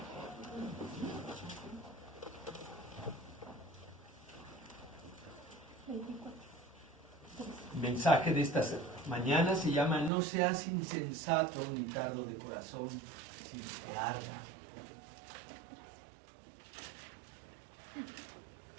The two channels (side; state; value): left; drops out; at 10.1 s